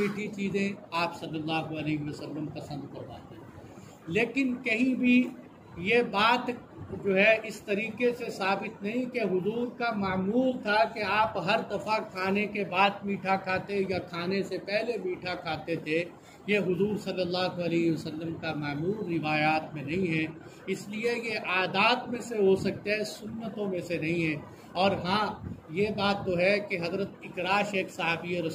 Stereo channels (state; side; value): identical; both; correlation 1.00